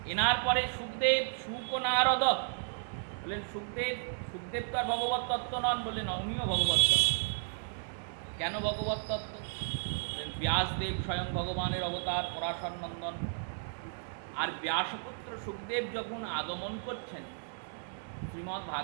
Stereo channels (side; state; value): left; silent; digital silence